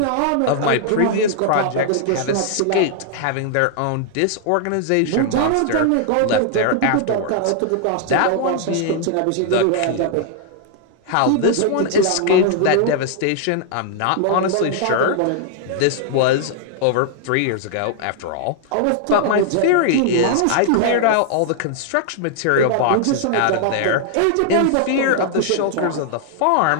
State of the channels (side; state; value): both; different; correlation -0.01